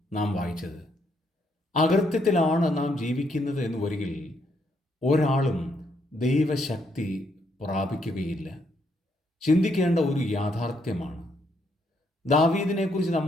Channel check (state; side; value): normal; both; correlation 0.74